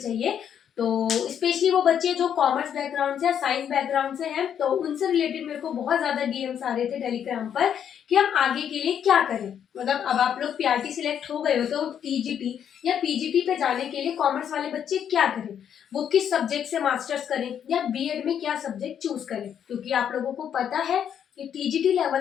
तो स्पेशली वो बच्चे जो कॉमर्स बैकग्राउंड से या साइंस बैकग्राउंड से हैं, तो उनसे रिलेटेड मेरे को बहुत ज्यादा डीएम्स आ रहे थे टेलीग्राम पर कि हम आगे के लिए क्या करें। मतलब अब आप लोग पीआरटी सिलेक्ट हो गए हो तो टीजीटी या पीजीटी पे जाने के लिए कॉमर्स वाले बच्चे क्या करें, वो किस सब्जेक्ट से मास्टर्स करें या बीएड में क्या सब्जेक्ट चूज करें। क्योंकि आप लोगों को पता है कि टीजीटी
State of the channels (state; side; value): quieter; right; 8.8 dB